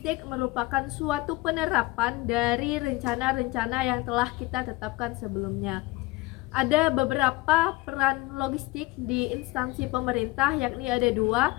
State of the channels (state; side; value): quieter; right; 21.3 dB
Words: merupakan suatu penerapan dari rencana-rencana yang telah kita tetapkan sebelumnya. Ada beberapa peran logistik di instansi pemerintah, yakni ada dua,